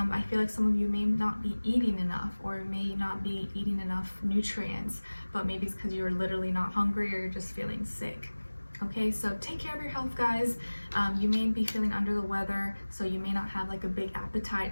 feel like some of you may not be eating enough, or may not be eating enough nutrients, but maybe it's because you're literally not hungry, or you're just feeling sick. Okay, so take care of your health, guys. You may be feeling under the weather, so you may not have like a big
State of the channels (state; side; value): inverted; both; correlation -1.00